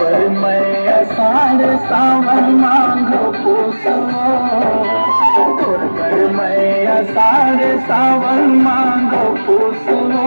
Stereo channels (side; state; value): both; inverted; correlation -1.00